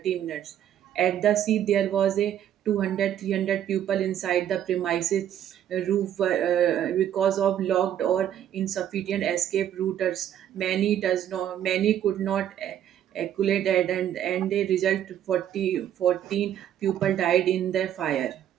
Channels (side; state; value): left; quieter; 10.6 dB